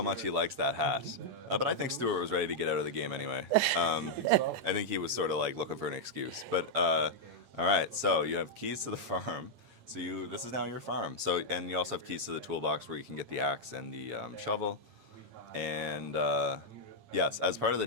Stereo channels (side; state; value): left; late; 8.8 ms